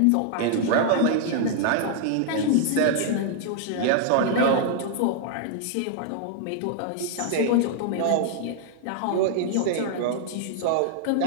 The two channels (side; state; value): both; different; correlation -0.01